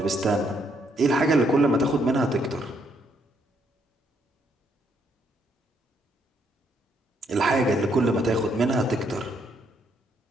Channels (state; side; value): normal; both; correlation 0.73